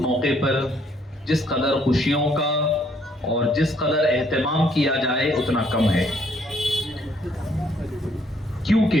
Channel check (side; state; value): both; normal; correlation 0.67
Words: موقع پر جس قدر خوشیوں کا اور جس قدر اہتمام کیا جائے اتنا کم ہے،